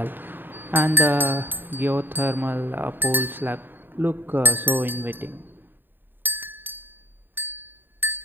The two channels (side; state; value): left; late; 0.094 ms